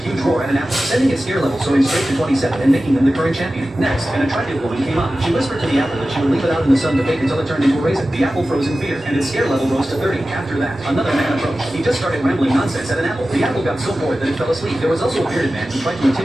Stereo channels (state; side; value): normal; both; correlation 0.95